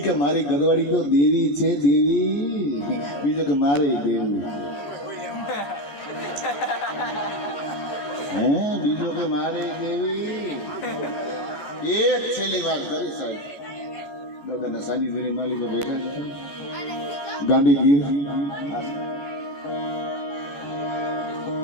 કે મારી ઘરવાળી તો દેવી છે બીજો કે મારે દેવી બીજો કે મારે દેવી એક છેલ્લી વાત કરી સાહેબ દાદાના સાનિધ્યની માલિકો બેઠા છે ગાંધીગીર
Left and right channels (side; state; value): right; late; 14 ms